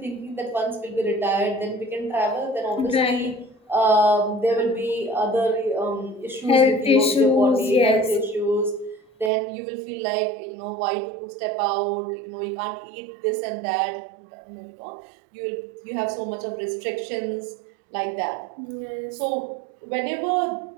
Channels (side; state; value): left; drops out; at 9.3 s